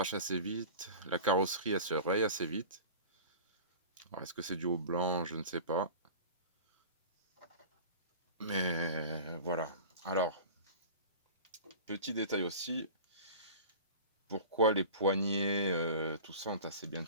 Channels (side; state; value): both; inverted; correlation -0.36